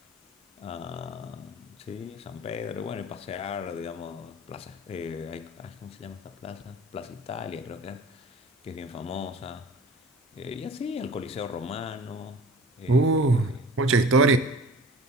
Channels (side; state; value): both; normal; correlation 0.43